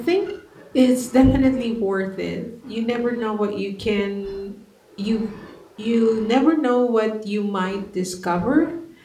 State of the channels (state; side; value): identical; both; correlation 1.00